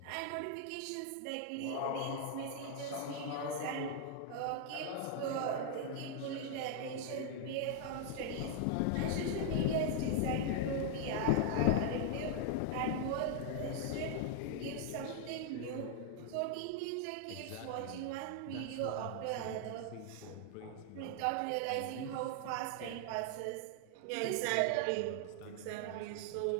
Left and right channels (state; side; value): different; both; correlation 0.00